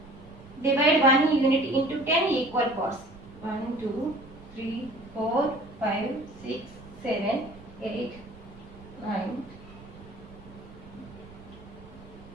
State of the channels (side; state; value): right; noise; rumble, 19 dB below the sound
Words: Divide 1 unit into 10 equal parts. 1, 2, 3, 4, 5, 6, 7, 8, 9.